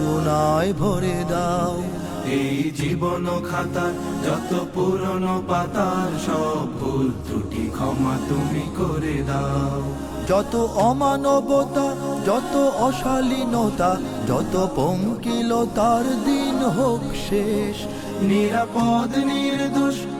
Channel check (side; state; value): both; identical; correlation 1.00